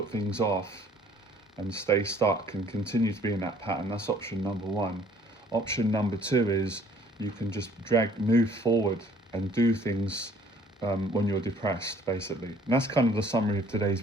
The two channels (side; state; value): both; normal; correlation 0.57